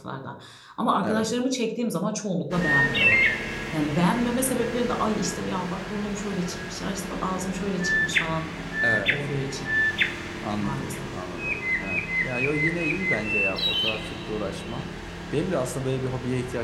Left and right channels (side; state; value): both; identical; correlation 1.00